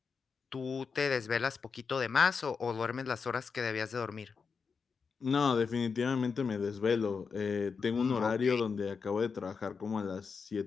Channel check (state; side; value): quieter; right; 5.5 dB